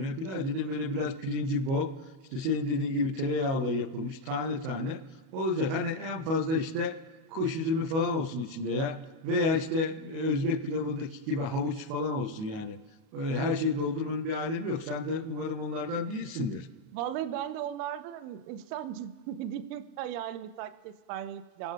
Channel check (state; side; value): late; left; 37 ms